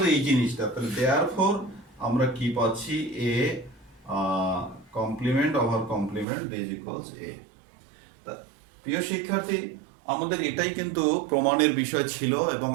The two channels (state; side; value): drops out; left; at 6.2 s